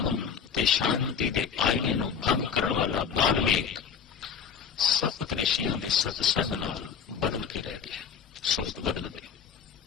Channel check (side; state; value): right; quieter; 7.0 dB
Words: ते शांति दे आईने नू भंग करन वाला बाल्मीक सप्त ऋषियां दे सतसंग नाल बदल के रह गया, सुरत बदल गई,